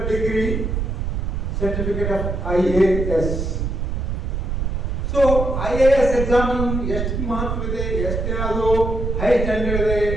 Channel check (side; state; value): right; noise; rumble, 2 dB below the sound